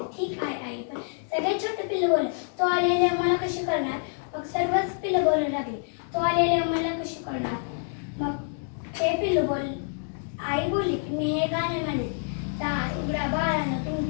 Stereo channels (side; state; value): right; silent; 60 dB below the other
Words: ठीक आहे आई, पण सगळ्यात छोटे पिल्लू बोलले, तो आलेले आम्हाला कशी करणार? मग सर्वच पिल्लू बोलू लागले, तो आलेले आम्हाला कशी करणार? मग ते पिल्लू आई बोलली की मी हे गाणे म्हणेन, दार उघडा बाळानं,